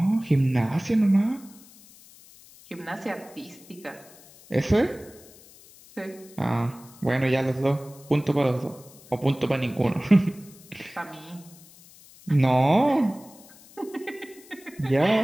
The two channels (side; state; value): left; noise; hiss, 23 dB below the sound